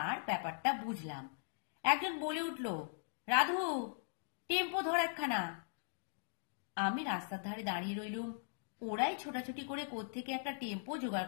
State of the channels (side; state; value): right; silent; digital silence